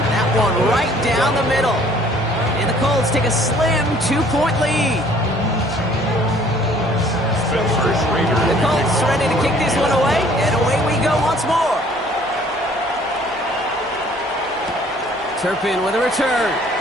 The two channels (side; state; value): right; noise; hum, 26 dB below the sound